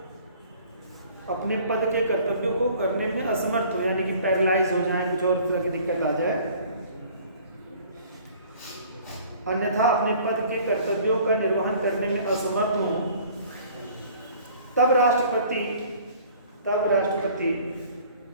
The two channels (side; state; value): both; inverted; correlation -0.52